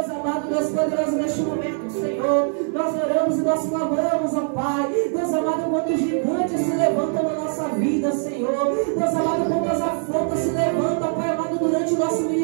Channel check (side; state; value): left; silent; 58 dB below the other